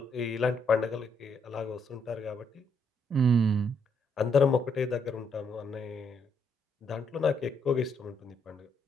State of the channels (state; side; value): normal; both; correlation 0.74